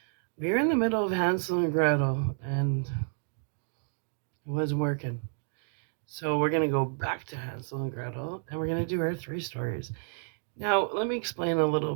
we were in the middle of Hansel and Gretel and it wasn't working. So we're going to go back to Hansel and Gretel and we're going to do our three stories. Now, let me explain a little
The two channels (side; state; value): left; silent; digital silence